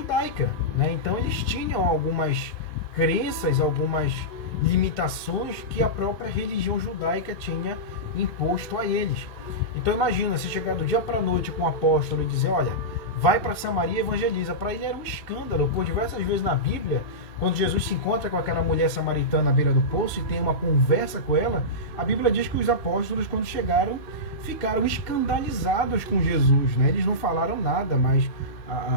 né? Então eles tinham algumas crenças, algumas limitações que a própria religião judaica tinha imposto a eles. Então imagina, se chegar do dia para a noite com o apóstolo e dizer, olha, vai para Samaria e evangeliza. Para ele era um escândalo, por diversas vezes na Bíblia, quando Jesus se encontra com aquela mulher samaritana à beira do poço e tem uma conversa com ela, a Bíblia diz que os apóstolos, quando chegaram, ficaram escandalizados com Jesus, né? Eles não falaram nada, mas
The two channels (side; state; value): right; late; 2.8 ms